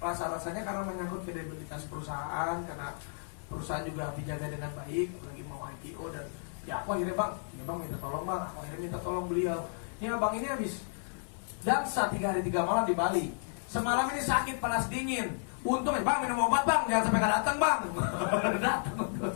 karena menyangkut kredibilitas perusahaan, karena perusahaan juga dijaga dengan baik, lagi mau IPO dan Ya aku akhirnya bang minta tolong bang, aku akhirnya minta tolong beliau. Ya bang ini habis dansa 3 hari 3 malam di Bali. Semalam ini sakit panas dingin. Untung ya bang minum obat bang, jangan sampai nggak datang bang. Datang.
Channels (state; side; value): silent; right; 56 dB below the other